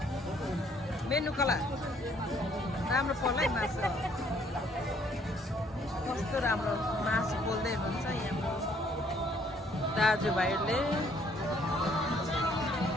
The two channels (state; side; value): normal; both; correlation 0.64